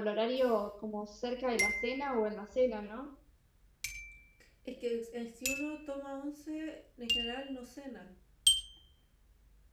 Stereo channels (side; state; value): both; identical; correlation 1.00